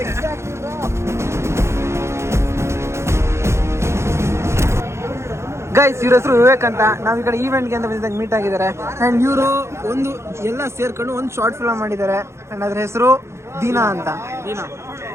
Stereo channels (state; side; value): late; left; 0.13 ms